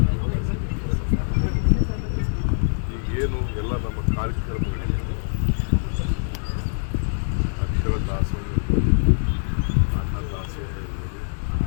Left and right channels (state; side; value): silent; right; digital silence